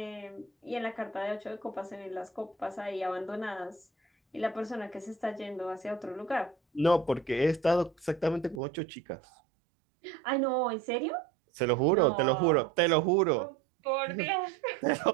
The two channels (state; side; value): drops out; left; at 8.6 s